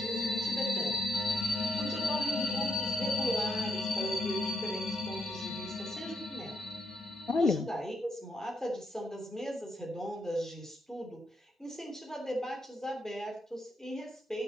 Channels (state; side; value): normal; both; correlation 0.78